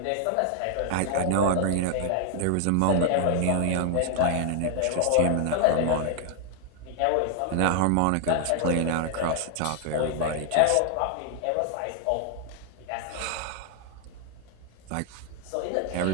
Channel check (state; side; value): different; both; correlation 0.00